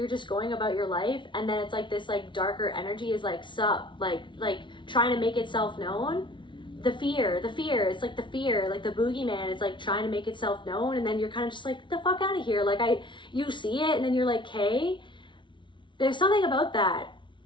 just going about your life, and then it's like this like darker energy is like like trying to make itself known. The fear, it's like the fear, like the boogeyman, it's like trying to make itself known, and then you're kind of just like, get the fuck out of here. Like you see it, and then you're like, hey, there's something about that.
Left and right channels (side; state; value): right; late; 0.24 ms